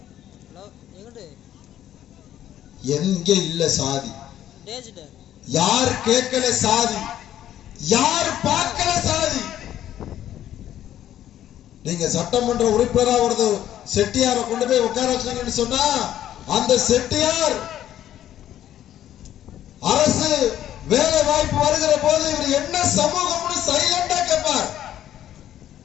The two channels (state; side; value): quieter; right; 11.7 dB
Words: எங்க இல்ல சாதி, யார் கேட்கல சாதி, யார் பார்க்கல சாதி. நீங்க சட்டமன்ற உறுப்பினரா ஒரு செட்டியாரை கொண்டு போய் உட்கார வச்சீங்கன்னு சொன்னா அந்த செட்டியார் அரசு வேலை வாய்ப்பு வருகிற போது இவர் என்ன சமூகம்னு சைலண்டா கேட்பார்.